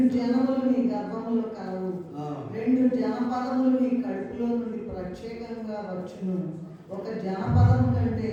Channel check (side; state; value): both; identical; correlation 1.00